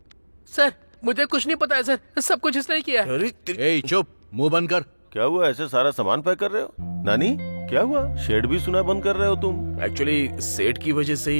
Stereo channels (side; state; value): both; inverted; correlation -1.00